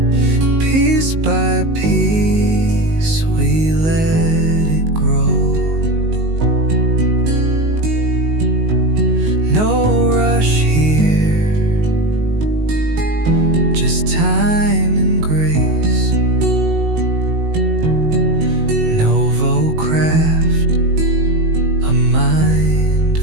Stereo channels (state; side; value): late; left; 19 ms